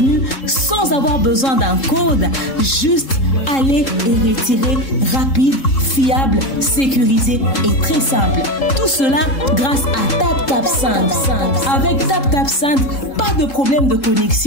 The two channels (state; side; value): late; right; 3.7 ms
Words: sans avoir besoin d'un code. Juste aller et retirer rapide, fiable, sécurisé et très simple. Tout cela grâce à TapTapSend. Avec TapTapSend, pas de problème de